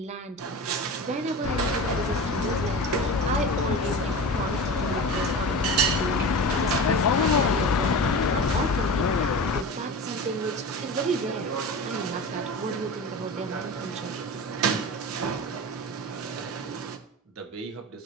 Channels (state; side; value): normal; both; correlation 0.30